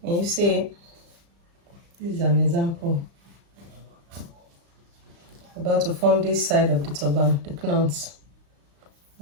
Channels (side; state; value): left; late; 35 ms